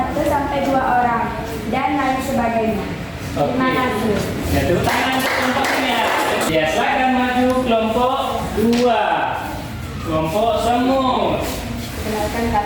orang, dan lain sebagainya. Terima kasih. Ya, tepuk tangan untuk kelompoknya. Ya, silakan maju kelompok 2. Kelompok semut. Kenalkan,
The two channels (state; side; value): identical; both; correlation 1.00